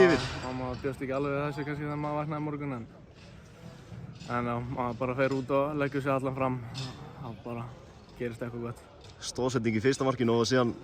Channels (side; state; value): both; identical; correlation 1.00